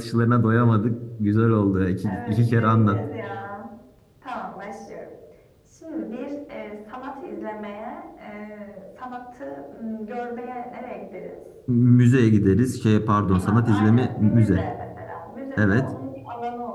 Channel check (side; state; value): both; identical; correlation 1.00